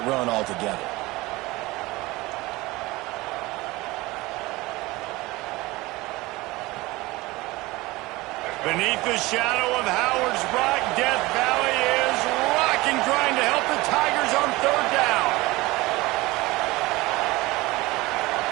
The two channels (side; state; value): left; quieter; 20.9 dB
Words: run altogether. Beneath the shadow of Howard's Rock, Death Valley is rocking, trying to help the Tigers on 3rd down.